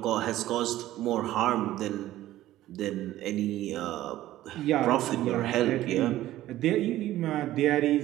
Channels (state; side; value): quieter; left; 14.7 dB